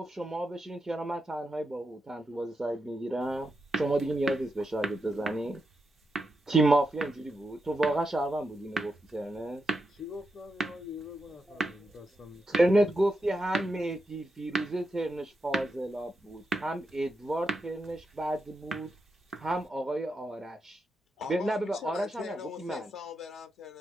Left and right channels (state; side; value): normal; both; correlation 0.86